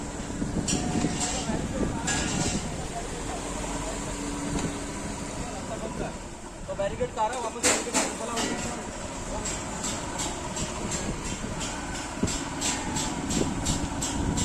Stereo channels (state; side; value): identical; both; correlation 1.00